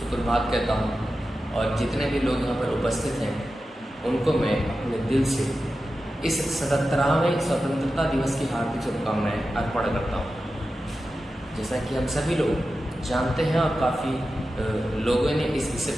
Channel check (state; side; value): normal; both; correlation 0.92